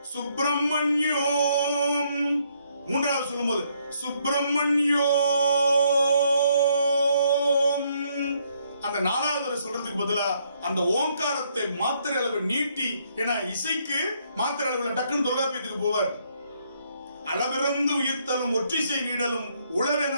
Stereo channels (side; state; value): both; inverted; correlation -0.71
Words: சுப்பிரமணியோம், 3வது சொல்லும்போது சுப்பிரமணியோம். அந்த 4வது சொல்றதுக்கு பதிலா அந்த ஓங்காரத்தை மாத்திரை அளவு நீட்டி, ஏன்னா இசைக்கு மாத்திரை அளவுல டக்குன்னு தொல்காப்பியத்துக்கு போவார். அளவிறந்து உயிர்த்தலும் ஒற்றிசை நீடலும் உளவென